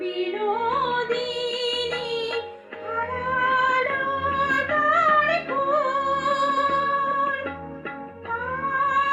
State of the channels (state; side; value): identical; both; correlation 1.00